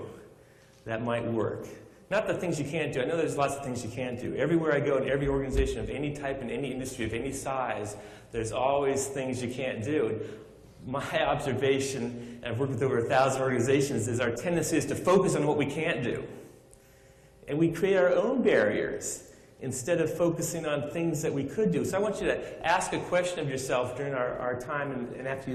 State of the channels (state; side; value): identical; both; correlation 1.00